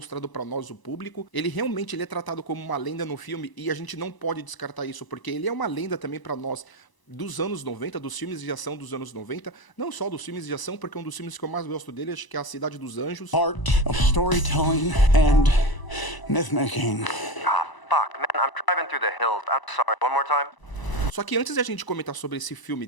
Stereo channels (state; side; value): late; right; 1.0 ms